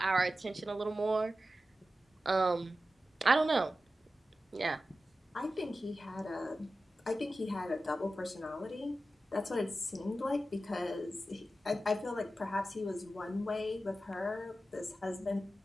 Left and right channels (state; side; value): normal; both; correlation 0.93